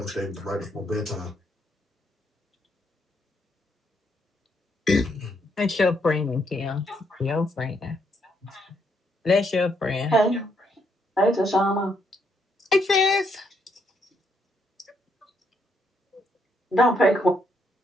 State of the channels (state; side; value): normal; both; correlation 0.74